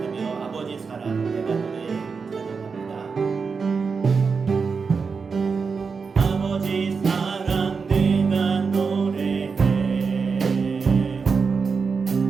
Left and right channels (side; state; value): left; quieter; 5.2 dB